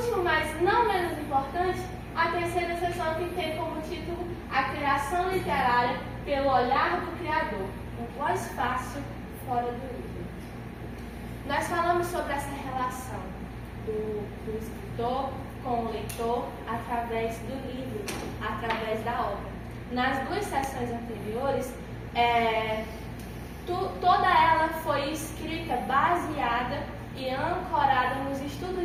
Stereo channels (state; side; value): identical; both; correlation 1.00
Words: mas não menos importante, a terceira sessão que tem como título A Criação Literária pelo Olhar do Criador, um voz fácil fora do livro. Nós falamos sobre essa relação do escritor com o leitor através do livro, através da obra. Nas duas sessões anteriores, toda ela foi escrita baseada e ancorada nos